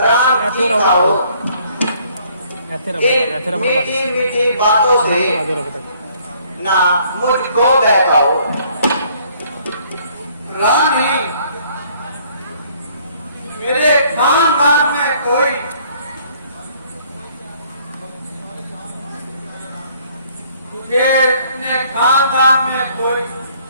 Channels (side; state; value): both; inverted; correlation -0.62